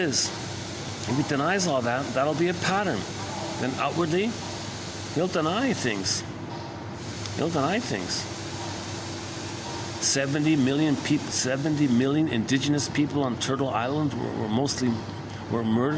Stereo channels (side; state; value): both; identical; correlation 1.00